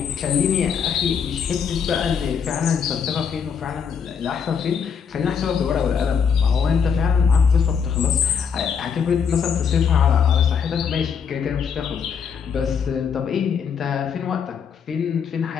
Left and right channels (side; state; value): right; quieter; 6.8 dB